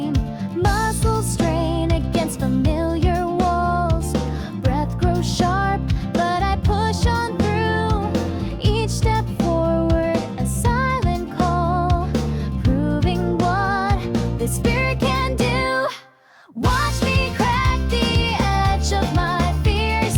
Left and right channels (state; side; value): identical; both; correlation 1.00